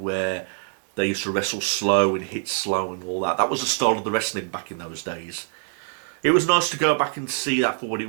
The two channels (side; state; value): left; silent; 62 dB below the other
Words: they used to wrestle slow and hit slow and all that. That was the style of the wrestling back in those days. It was nice to go back and see that for what